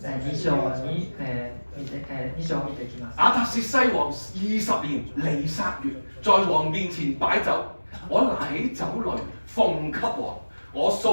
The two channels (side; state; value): both; inverted; correlation -1.00